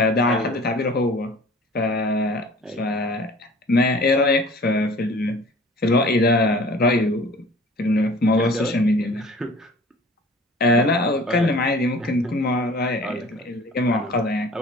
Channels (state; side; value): normal; both; correlation 0.46